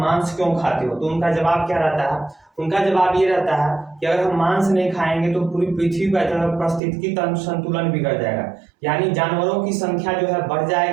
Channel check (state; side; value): drops out; left; at 6.8 s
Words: क्यों खाते हो, तो उनका जवाब क्या रहता है? उनका जवाब ये रहता है कि अगर हम मांस नहीं खाएंगे तो पूरी पृथ्वी का पारिस्थितिकी तंत्र संतुलन बिगड़ जाएगा, यानी जानवरों की संख्या जो है बढ़